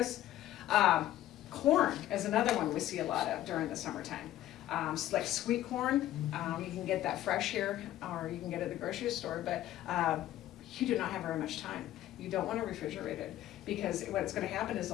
Corn is another one we see a lot of during the summertime. Like sweet corn, you can get that fresh here, or you can get it at the grocery store, but you do not have very much time. You don't want to refrigerate it, because what's going to happen is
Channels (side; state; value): right; quieter; 13.7 dB